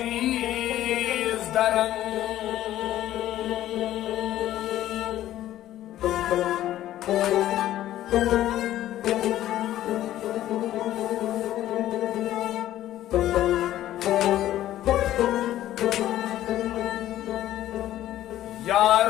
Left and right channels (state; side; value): quieter; right; 13.4 dB